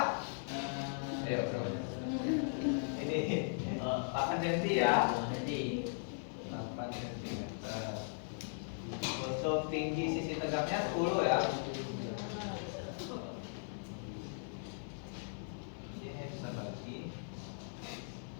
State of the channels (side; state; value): right; silent; digital silence